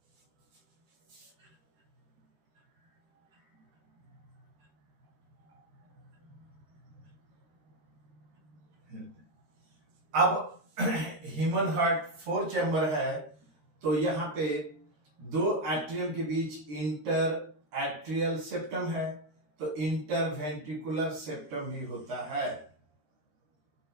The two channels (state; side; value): late; left; 13 ms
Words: अब ह्यूमन हार्ट 4 चैम्बर है, तो यहां पे दो एट्रियम के बीच इंटर एट्रियल सेप्टम है, तो इंटर वेंट्रिकुलर सेप्टम ही होता है।